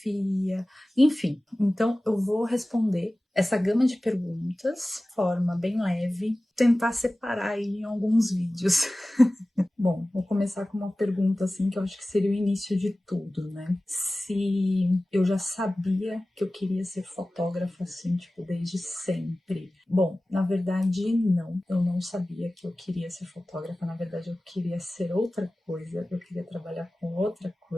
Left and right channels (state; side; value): normal; both; correlation 0.97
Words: enfim. Então eu vou responder essa gama de perguntas de forma bem leve, tentar separar aí em alguns vídeos. Bom, vou começar com uma pergunta assim que eu acho que seria o início de tudo, né? Se eu já sabia que eu queria ser fotógrafa assim, tipo, desde sempre. Bom, na verdade não, eu não sabia que eu queria ser fotógrafa, na verdade eu queria ser outra coisa, eu queria trabalhar com outra